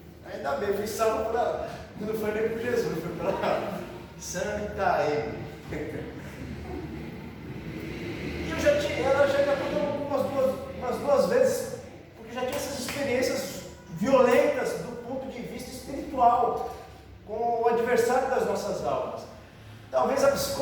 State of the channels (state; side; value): identical; both; correlation 1.00